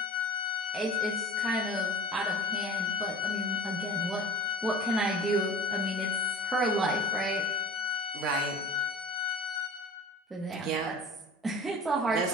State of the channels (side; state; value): both; normal; correlation 0.39